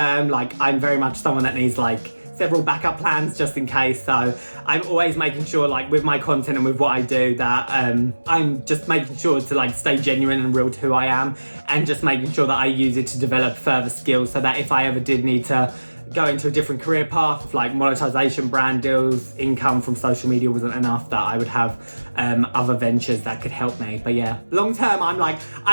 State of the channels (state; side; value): inverted; both; correlation -1.00